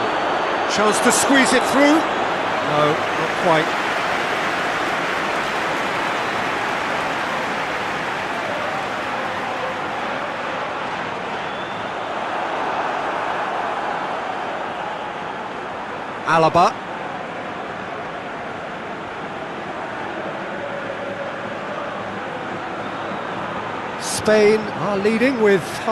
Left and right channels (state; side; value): identical; both; correlation 1.00